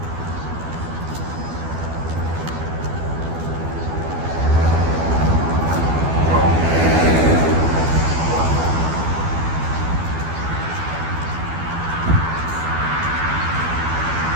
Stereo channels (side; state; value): left; late; 12 ms